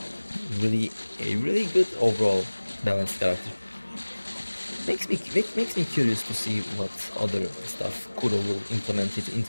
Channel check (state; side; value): inverted; both; correlation -1.00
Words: A really good overall balanced character. Makes me curious to see what other stuff Kuro will implement it